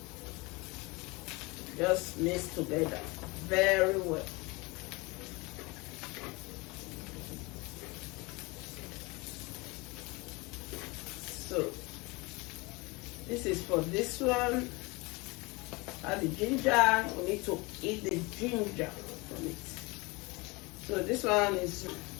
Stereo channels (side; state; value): right; quieter; 25.4 dB